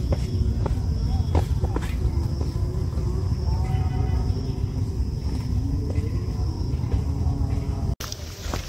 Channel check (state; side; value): identical; both; correlation 1.00